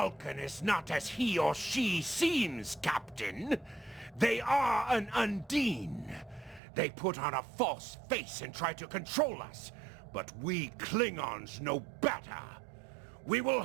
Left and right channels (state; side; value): drops out; left; at 6.6 s